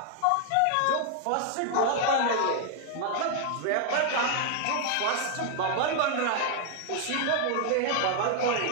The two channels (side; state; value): both; different; correlation 0.00